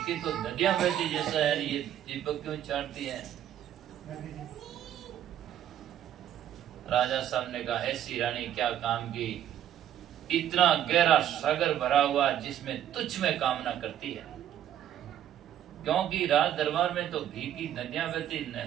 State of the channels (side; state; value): left; quieter; 11.0 dB